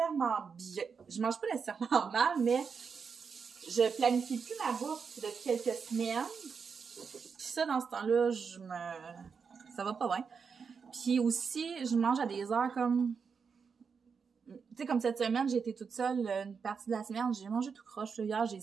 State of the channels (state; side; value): quieter; left; 5.8 dB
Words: bien. Je mange pas nécessairement mal, mais je planifie plus ma bouffe depuis quelques semaines. Puis ça, dans ce temps-là, ça va pas bien. Puis aussi, je mange à des heures comme... Tu sais, comme cette semaine, j'ai été toute seule une partie de la semaine. J'ai mangé tout croche. Là. Hier, j'ai